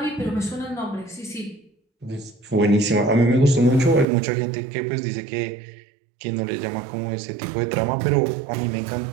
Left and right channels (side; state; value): left; drops out; at 4.0 s